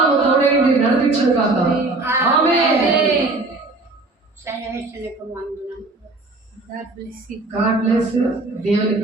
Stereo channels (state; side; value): quieter; left; 3.2 dB